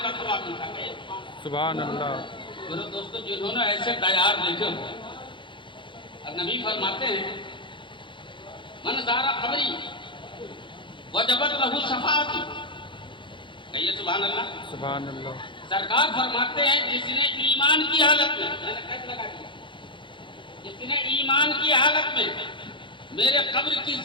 सवाब मिलता है, सुभान अल्लाह। मेरे दोस्तों, जिन्होंने ऐसे तैयार देखे हो, नबी फरमाते हैं मन ज़ारा कब्री वजबत लहू शफाअती, कहिए सुभान अल्लाह, सुभान अल्लाह। सरकार फरमाते हैं जिसने ईमान की हालत में, मैंने कैसे लगा दिया, जिसने ईमान की हालत में मेरे कब्र की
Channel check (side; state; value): right; late; 0.23 ms